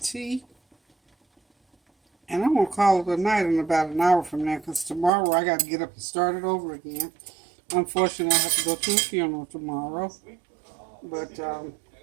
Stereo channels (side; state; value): left; drops out; at 5.1 s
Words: tea. And I'm going to call it a night in about an hour from now, because tomorrow I got to get up and start it over again. Unfortunately, I have to go to a funeral tomorrow. But